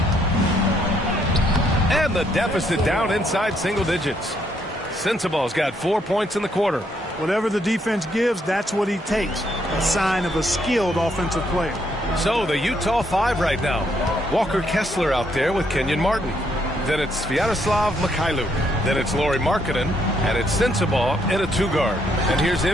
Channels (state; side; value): normal; both; correlation 0.72